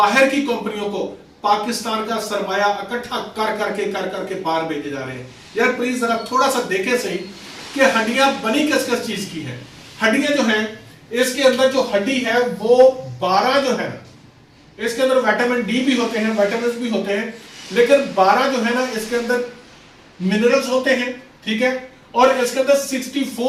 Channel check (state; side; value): identical; both; correlation 1.00